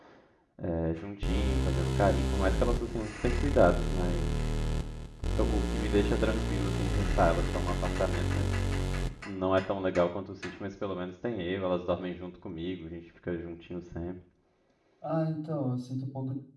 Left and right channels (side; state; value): both; identical; correlation 1.00